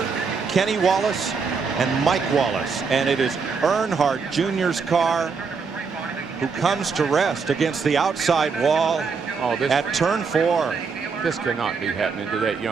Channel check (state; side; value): quieter; left; 5.2 dB